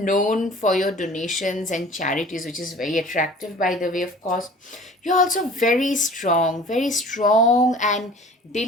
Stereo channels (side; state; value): both; normal; correlation 0.45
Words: for your donations and charities, which is very attractive, by the way, of course. You're also very strong and